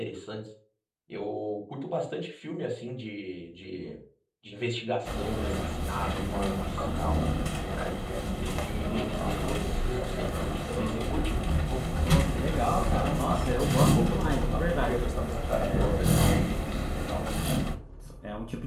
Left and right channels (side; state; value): both; identical; correlation 1.00